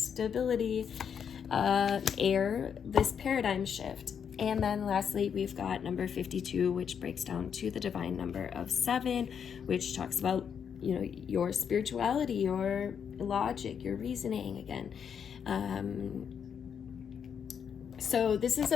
air, this paradigm shift. And then lastly, we've got number 52, which breaks down to the divine number of 7, which talks about, your spirituality, your logic, your reasoning again. So this is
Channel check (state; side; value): quieter; right; 7.5 dB